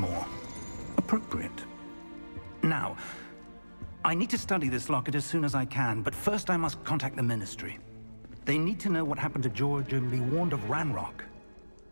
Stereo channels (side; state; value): both; inverted; correlation -1.00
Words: appropriate. Now, I need to study this locket as soon as I can, but first I must contact the Ministry. They need to know what happened to George and be warned of Ranrock.